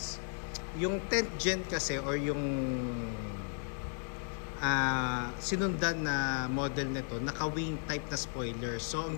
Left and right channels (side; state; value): right; silent; 55 dB below the other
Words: yung 10th gen kasi or yung sinundan na model nito, naka-wing type na spoiler. So,